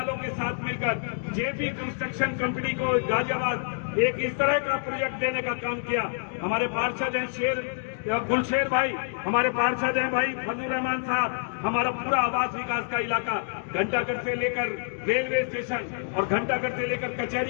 के साथ मिलकर जेपी कंस्ट्रक्शन कंपनी को गाजियाबाद एक इस तरह का प्रोजेक्ट देने का काम किया। हमारे पार्षद हैं गुलशेर भाई, हमारे पार्षद हैं भाई फजलुर रहमान साहब, हमारा पूरा आवास विकास का इलाका घंटाघर से लेकर रेलवे स्टेशन और घंटाघर से लेकर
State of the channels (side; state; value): right; silent; digital silence